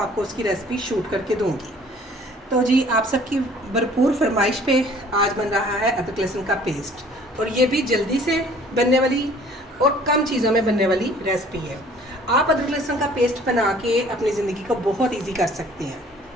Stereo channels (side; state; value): both; normal; correlation 0.53